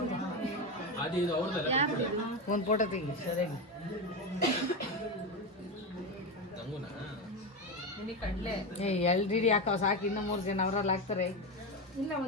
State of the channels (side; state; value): both; normal; correlation 0.15